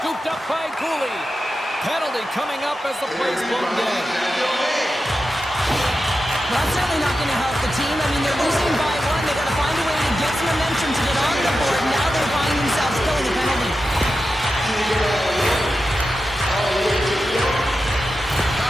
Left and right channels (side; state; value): both; normal; correlation 0.91